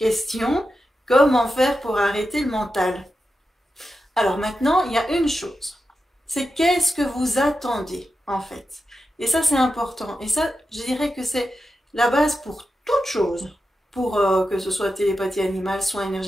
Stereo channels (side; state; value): both; normal; correlation 0.90